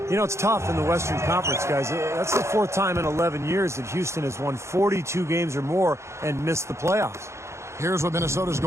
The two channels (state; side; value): late; left; 0.13 ms